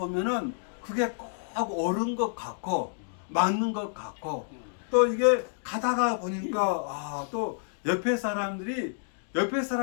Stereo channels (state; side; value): silent; right; digital silence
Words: 그게 꼭 옳은 것 같고 맞는 것 같고 또 이게 가다가 보니까 또 옆에 사람들이